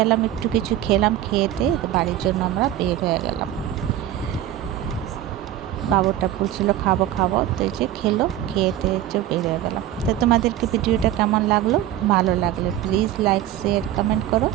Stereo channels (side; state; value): left; quieter; 12.4 dB